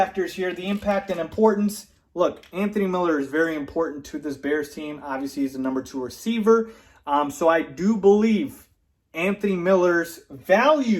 here, the impact and importance. Look, Anthony Miller is very important to this Bears team. Obviously, he's the number 2 receiver. So I do believe Anthony Miller's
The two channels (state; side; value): identical; both; correlation 1.00